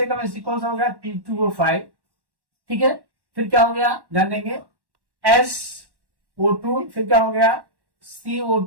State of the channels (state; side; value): late; left; 1.1 ms